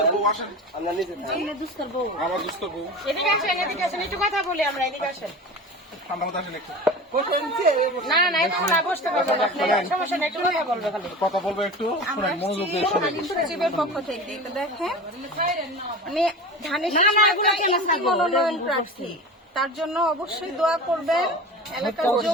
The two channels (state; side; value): normal; both; correlation 0.32